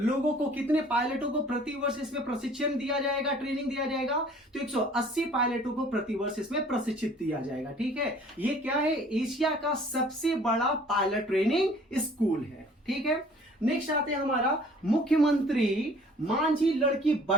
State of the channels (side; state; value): both; normal; correlation 0.53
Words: को, कितने पायलटों को प्रतिवर्ष इसमें प्रशिक्षण दिया जाएगा, ट्रेनिंग दिया जाएगा? तो 180 पायलटों को प्रतिवर्ष इसमें प्रशिक्षित दिया जाएगा। ठीक है। ये क्या है? एशिया का सबसे बड़ा पायलट ट्रेनिंग स्कूल है। ठीक है। नेक्स्ट आते हैं हमारा मुख्यमंत्री मांझी लड़की